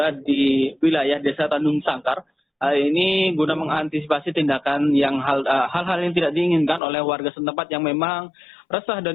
di wilayah Desa Tanjung Sangkar. Ini guna mengantisipasi tindakan yang hal-hal yang tidak diinginkan oleh warga setempat yang memang resah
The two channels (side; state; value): right; drops out; at 6.8 s